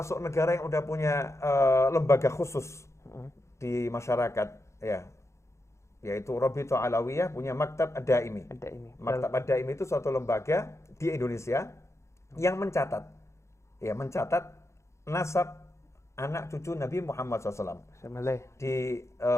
negara yang udah punya lembaga khusus di masyarakat, yaitu Rabithah Alawiyah punya Maktab Ad-Daimi. Maktab Ad-Daimi itu suatu lembaga di Indonesia yang mencatat nasab anak cucu Nabi Muhammad SAW di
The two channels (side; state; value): right; late; 0.14 ms